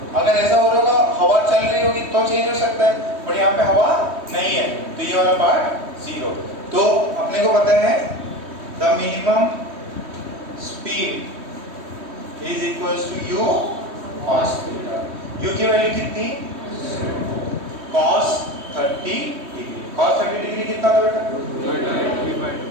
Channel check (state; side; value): late; left; 3.2 ms